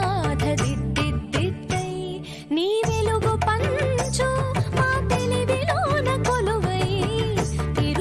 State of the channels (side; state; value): both; identical; correlation 1.00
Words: దిద్దిద్దిద్దై నీ వెలుగు పంచు మా తెలివిలోన కొలువై